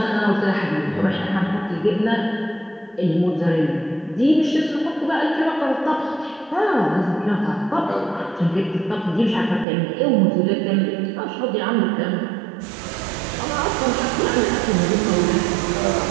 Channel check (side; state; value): left; drops out; at 9.7 s